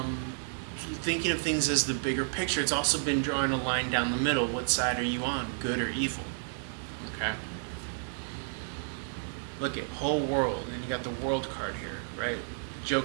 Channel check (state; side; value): silent; left; digital silence